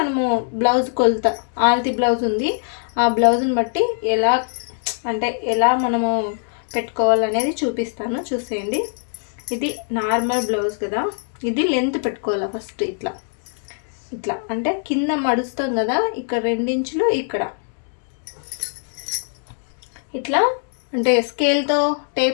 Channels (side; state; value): right; silent; 64 dB below the other